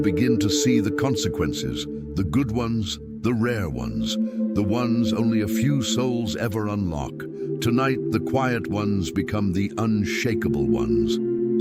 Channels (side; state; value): both; identical; correlation 1.00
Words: begin to see the consequences, the good ones, the rare ones, the ones only a few souls ever unlock. Tonight, the quiet ones become the unshakable ones.